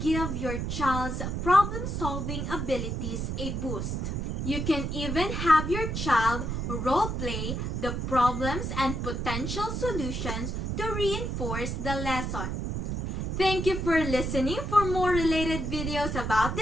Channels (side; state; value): right; noise; rumble, 2 dB below the sound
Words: your child's problem-solving abilities a boost. You can even have your child role-play the problems and potential solutions to reinforce the lesson. Thank you for listening. For more related videos about